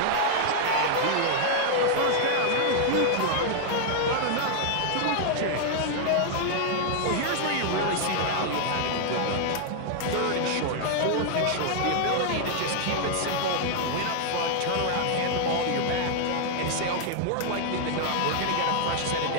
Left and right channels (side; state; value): both; different; correlation 0.00